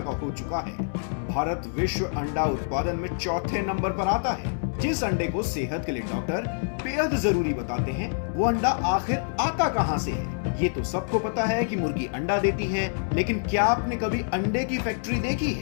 हो चुका है। भारत विश्व अंडा उत्पादन में चौथे नंबर पर आता है। जिस अंडे को सेहत के लिए डॉक्टर बेहद जरूरी बताते हैं, वो अंडा आखिर आता कहां से है? ये तो सबको पता है कि मुर्गी अंडा देती है, लेकिन क्या आपने कभी अंडे की फैक्ट्री देखी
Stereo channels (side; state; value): right; silent; digital silence